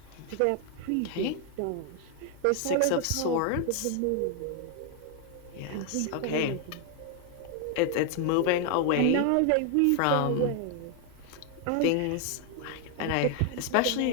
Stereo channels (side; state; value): both; different; correlation 0.00